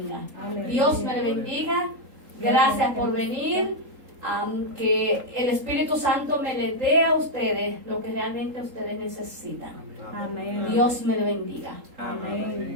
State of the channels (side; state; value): left; late; 3.8 ms